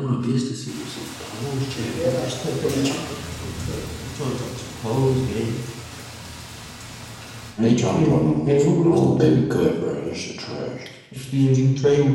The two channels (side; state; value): both; identical; correlation 1.00